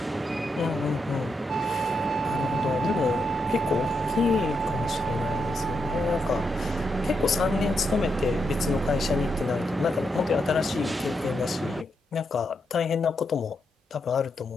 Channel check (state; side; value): normal; both; correlation 0.82